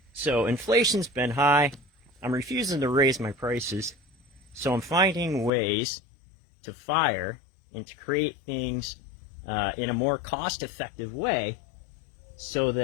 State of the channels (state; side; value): drops out; right; at 5.5 s